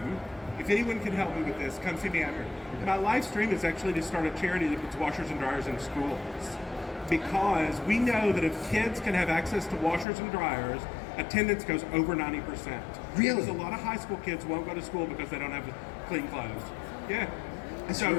if anyone can help me with this, come see me after. My life's dream is actually to start a charity that puts washers and dryers in schools. Because we know that if kids can have access to washers and dryers, attendance goes over 90%. Really? Because a lot of high school kids won't go to school because they don't have clean clothes. Yeah. That's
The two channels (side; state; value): right; drops out; at 10.1 s